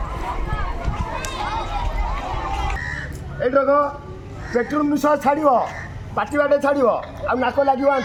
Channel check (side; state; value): both; identical; correlation 1.00